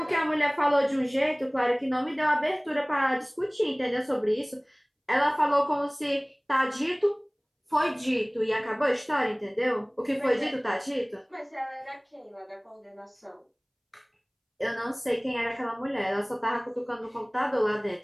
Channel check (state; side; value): identical; both; correlation 1.00